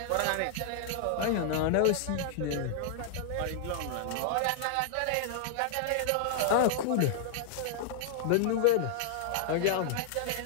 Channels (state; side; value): different; both; correlation -0.01